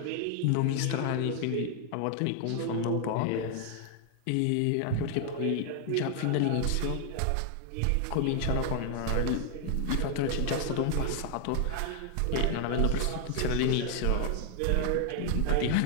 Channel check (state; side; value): different; both; correlation 0.00